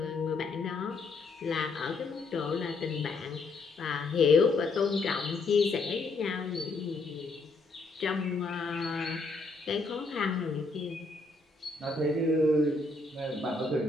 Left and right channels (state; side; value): quieter; right; 3.5 dB